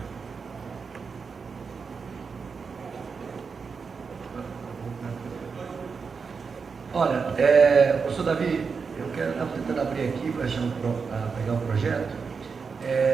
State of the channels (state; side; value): quieter; left; 5.4 dB